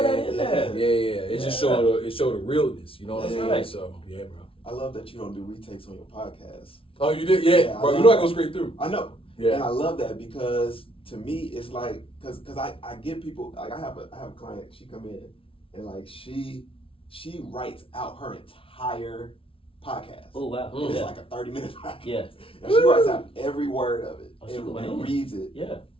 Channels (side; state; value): right; late; 0.26 ms